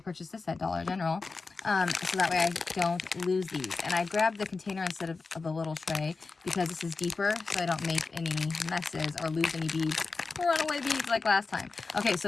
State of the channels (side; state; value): right; quieter; 4.1 dB